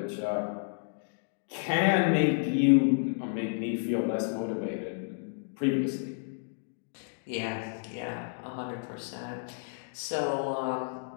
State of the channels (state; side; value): silent; right; digital silence